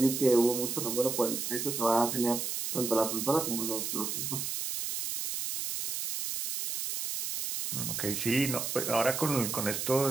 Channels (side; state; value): right; noise; hiss, 3 dB below the sound